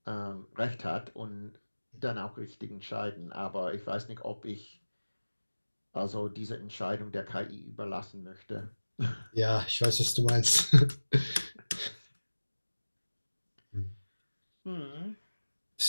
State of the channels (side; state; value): both; inverted; correlation -1.00